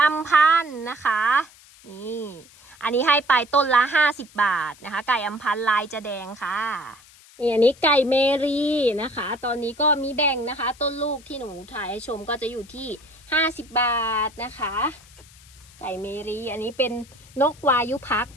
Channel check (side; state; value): left; noise; hiss, 24 dB below the sound